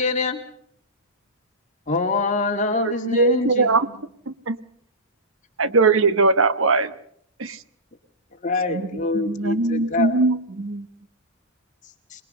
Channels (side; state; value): both; normal; correlation -0.17